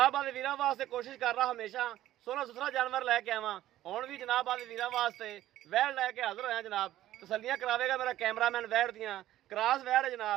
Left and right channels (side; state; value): left; quieter; 13.8 dB